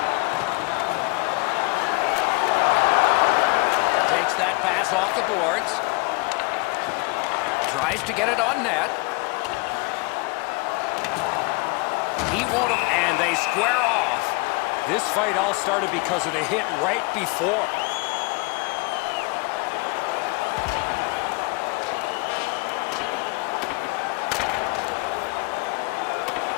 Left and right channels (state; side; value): quieter; right; 27.5 dB